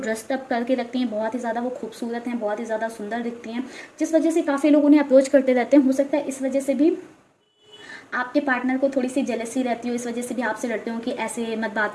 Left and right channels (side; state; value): both; identical; correlation 1.00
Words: अप करके रखती हैं, बहुत ही ज़्यादा वो खूबसूरत हैं, बहुत ही ज़्यादा सुंदर दिखती हैं, जिस वजह से काफ़ी लोग उन्हें अप्रोच करते रहते हैं। हो सकता है इस वजह से भी आपके पार्टनर को थोड़ी सी जेलसी रहती हो, इस वजह से भी आपसे डरते हो कि ऐसे मत बात